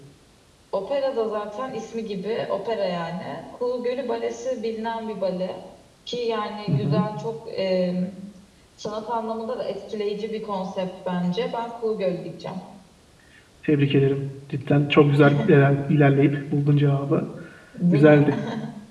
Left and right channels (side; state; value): both; identical; correlation 1.00